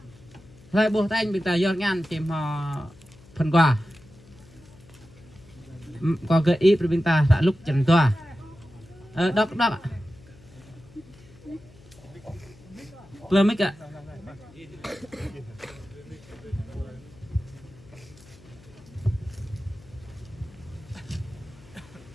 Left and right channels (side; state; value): left; noise; hum, 23 dB below the sound